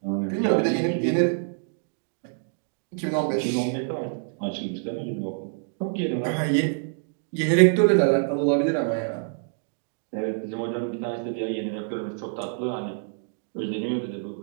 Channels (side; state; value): left; silent; digital silence